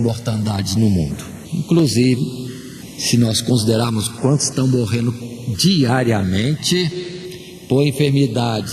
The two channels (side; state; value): both; identical; correlation 1.00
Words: no mundo, inclusive se nós considerarmos quantos estão morrendo diariamente por